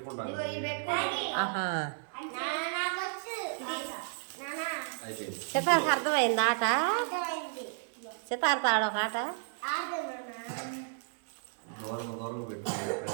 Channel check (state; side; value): silent; left; digital silence